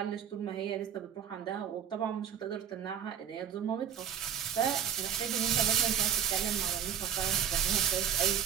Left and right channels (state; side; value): quieter; left; 8.9 dB